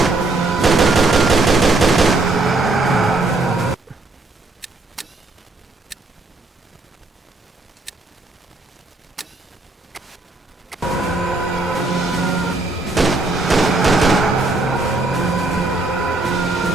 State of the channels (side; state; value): left; quieter; 3.2 dB